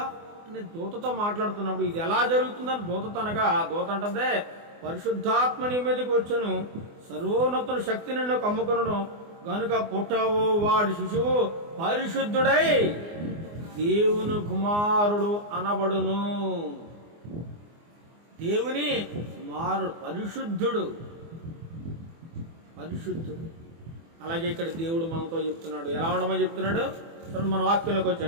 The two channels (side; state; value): left; late; 24 ms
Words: అని దూతతో మాట్లాడుతున్నప్పుడు ఇది ఎలా జరుగుతుందని దూతతో అనగా, దూత అంటదే పరిశుద్ధాత్మ నీ మీదకి వచ్చును, సర్వోన్నతుల శక్తి నిన్ను కమ్ముకును, గనుక పుట్టవు వాడి శిశువు పరిశుద్ధుడై దేవుని కుమారుడు అనబడును. దేవుని కుమారుడు పరిశుద్ధుడు, పరిశుద్ధుడు. అలాగే ఇక్కడ దేవుడు మనతో చెప్తున్నాడు. ఎలా ఉండమని చెప్తున్నాడు చూడండి. మన వాక్యంలోకి